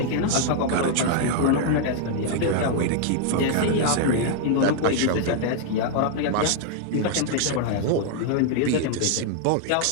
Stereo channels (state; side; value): different; both; correlation 0.00